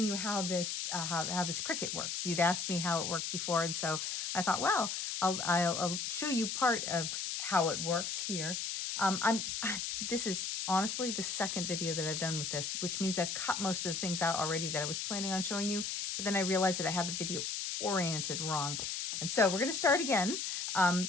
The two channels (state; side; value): noise; left; hiss, 2 dB below the sound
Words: you how this Cricut works. You'd asked me how it worked before, and so I thought, well, I'll show you part of how it works here. This is honestly the second video that I've done with this, which means I've cut most of the things out already that I was planning on showing you, but then I realized that I had the video oriented wrong. And so we're going to start again.